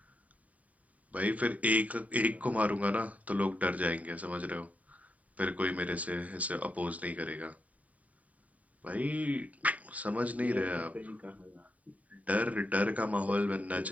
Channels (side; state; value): left; late; 0.070 ms